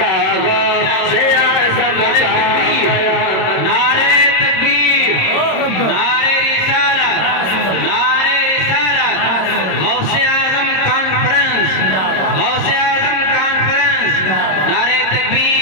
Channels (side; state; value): right; late; 26 ms